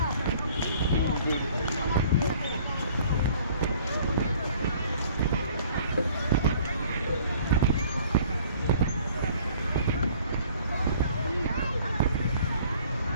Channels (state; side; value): inverted; both; correlation -0.54